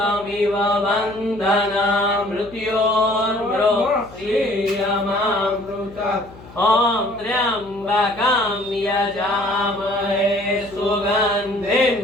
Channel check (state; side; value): noise; left; hum, 20 dB below the sound